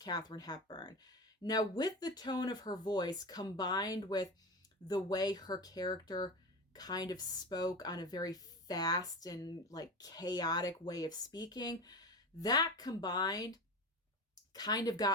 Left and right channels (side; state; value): both; normal; correlation 0.26